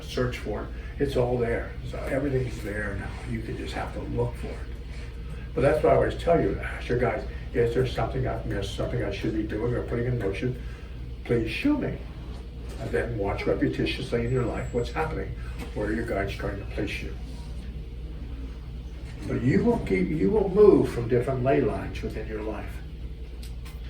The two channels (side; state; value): both; identical; correlation 1.00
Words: search for it. It's all there. So everything's there now. You can just have to look for it. But that's why I always tell you, ask your guys, is there something I've missed, something I should be doing or putting in motion? Please show me. And then watch repetitiously in your life what's happening, where your guide's trying to place you. But you will move from different ley lines within your life.